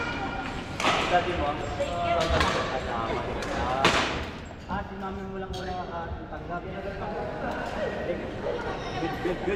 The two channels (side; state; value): both; identical; correlation 1.00